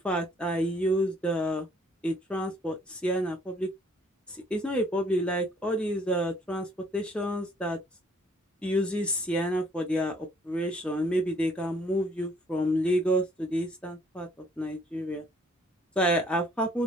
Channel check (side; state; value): both; normal; correlation 0.62